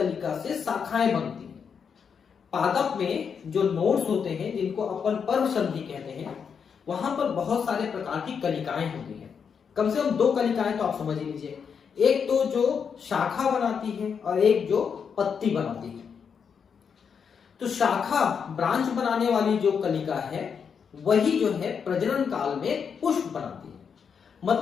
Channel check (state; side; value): quieter; right; 6.7 dB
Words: से शाखाएं बनती हैं। पादप में जो नोड्स होते हैं, जिनको अपन पर्व संधि कहते हैं, वहां पर बहुत सारे प्रकार की कलिकाएं होती हैं। कम से कम 2 कलिकाएं तो आप समझ लीजिए, एक तो जो शाखा बनाती है और एक जो पत्ती बनाती है। तो शाखा ब्रांच बनाने वाली जो कलिका है वही जो है प्रजनन काल में पुष्प बनाती है।